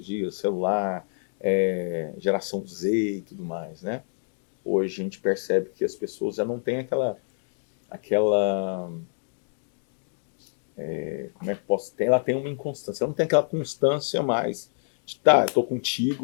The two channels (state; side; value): silent; right; digital silence